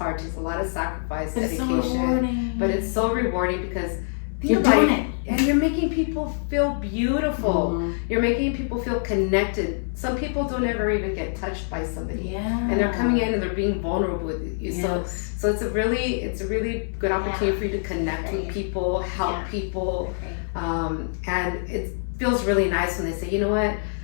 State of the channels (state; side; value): silent; right; 62 dB below the other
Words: It's a lot of sacrifice, dedication. It's so rewarding. But it's so rewarding because you're doing it. And you're making people feel beautiful. You're making people feel connected. Some people don't ever even get touched by somebody. And they're coming in and they're being vulnerable with you. So it's a really good opportunity for you to connect with people, help people. And it feels really nice when they say, you know what?